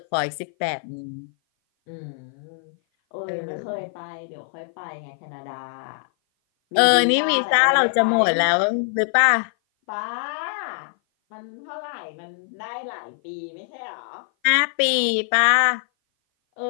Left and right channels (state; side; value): silent; right; 57 dB below the other